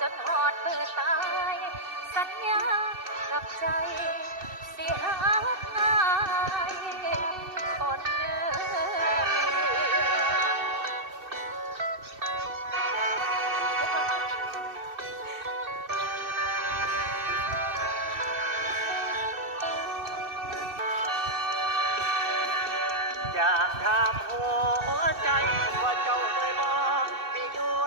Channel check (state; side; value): late; left; 2.6 ms